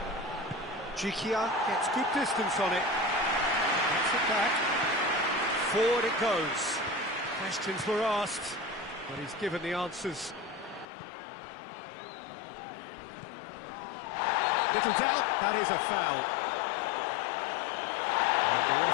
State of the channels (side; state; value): right; drops out; at 10.9 s